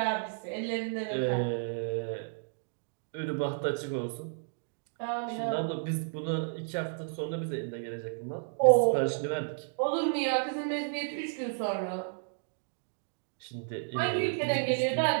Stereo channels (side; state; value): left; silent; digital silence